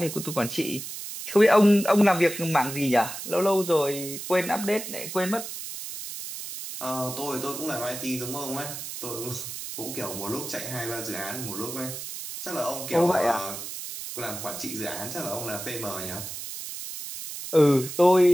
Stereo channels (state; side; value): noise; right; hiss, 8 dB below the sound